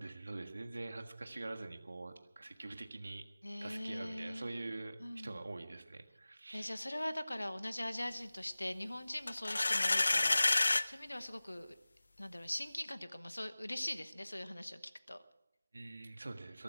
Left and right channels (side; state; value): both; inverted; correlation -0.98